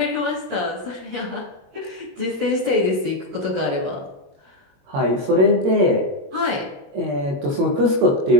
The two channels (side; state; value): left; late; 22 ms